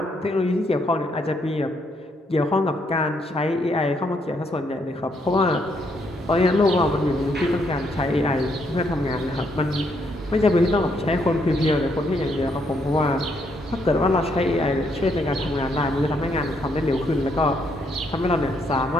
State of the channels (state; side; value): normal; both; correlation 0.74